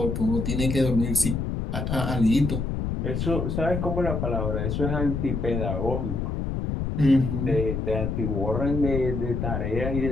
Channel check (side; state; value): left; noise; rumble, 2 dB below the sound